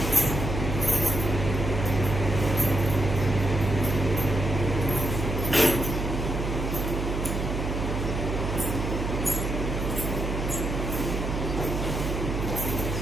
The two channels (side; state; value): right; noise; hum, 2 dB below the sound